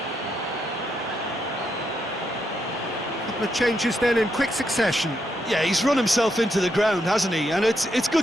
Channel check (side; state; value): both; normal; correlation 0.80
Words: The changes then in quick succession. Yeah, he's run himself into the ground, hasn't he? And it's